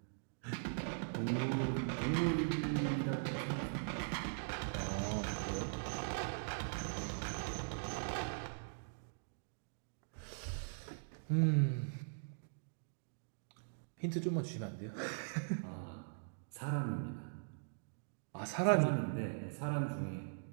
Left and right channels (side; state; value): left; silent; digital silence